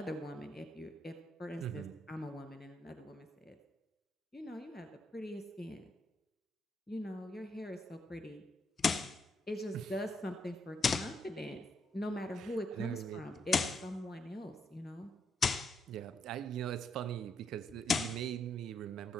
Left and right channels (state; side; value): normal; both; correlation 0.77